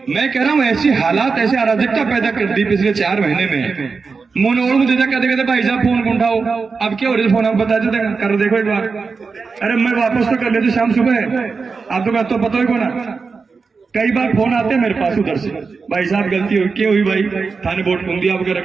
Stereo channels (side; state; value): left; quieter; 4.8 dB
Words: मैं कह रहा हूँ ऐसी हालात, ऐसे अराजकता पैदा कर दी पिछले 4 महीने में। मोनोड़ मुझे कहते भाई साहब फोन कौन उठाओ, अब क्या हो रहा है फोन आप बता देते कर देखो एक बार। अरे मैं वापस तो कर लेते शाम सुबह, आप तो पता ही को ना। कई बार फोन आते हैं मेरे पास उधर से, भाई साहब गलती हुई, क्या हुई भाई? थाने वोट घूम दिया आपके